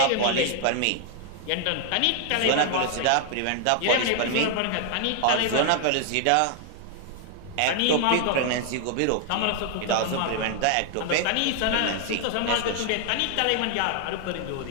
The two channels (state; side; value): different; both; correlation 0.00